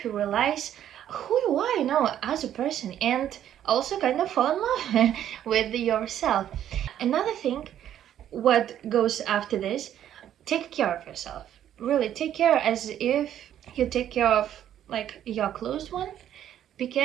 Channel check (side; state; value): left; quieter; 10.8 dB